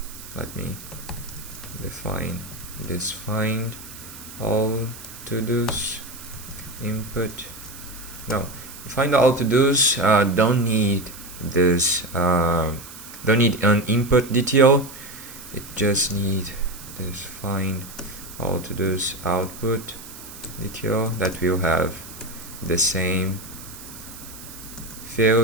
let me define this find all to-dos input. No, find all to-dos don't need this don't need an input detail. It just need this find all to-dos output detail that will have the same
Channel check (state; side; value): noise; right; hiss, 15 dB below the sound